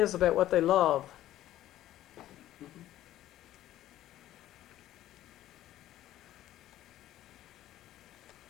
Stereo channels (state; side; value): quieter; right; 13.6 dB